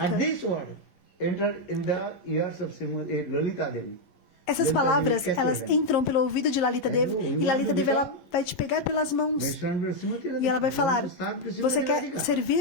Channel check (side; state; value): right; late; 11 ms